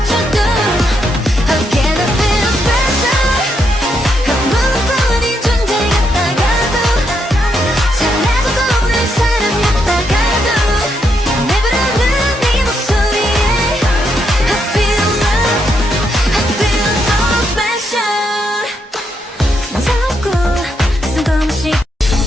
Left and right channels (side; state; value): both; normal; correlation 0.79